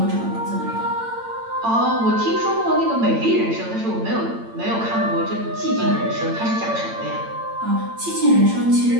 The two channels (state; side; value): late; left; 8.8 ms